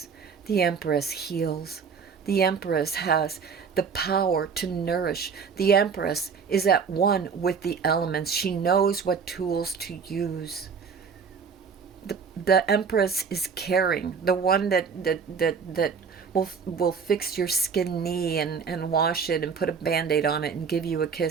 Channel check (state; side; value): quieter; left; 5.9 dB